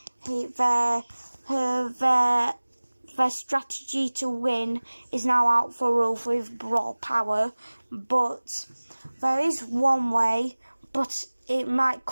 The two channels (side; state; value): both; inverted; correlation -1.00